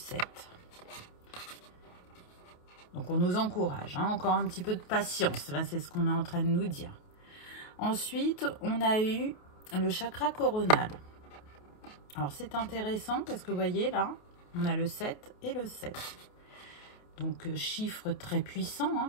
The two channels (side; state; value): right; late; 28 ms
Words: Donc, on nous encourage, hein, encore un petit peu de patience. Là, c'est ce qu'on est en train de nous dire. Ensuite, on a eu le chakra coronal. Alors, c'est intéressant parce que vous voyez là, on a le 7 et le 7. Donc, chiffre très puissant, hein,